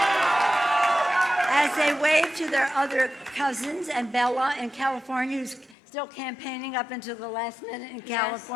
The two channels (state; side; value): drops out; right; at 5.8 s